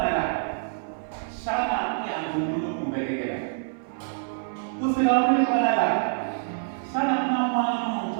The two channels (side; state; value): left; silent; 61 dB below the other